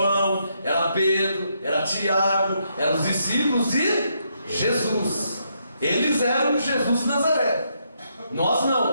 era Pedro, era Tiago, eram os discípulos de Jesus. Eles eram de Jesus de Nazaré. Nós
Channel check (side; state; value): both; inverted; correlation -0.77